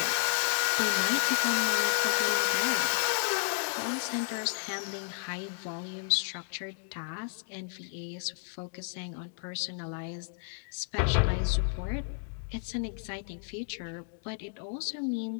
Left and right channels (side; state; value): right; silent; digital silence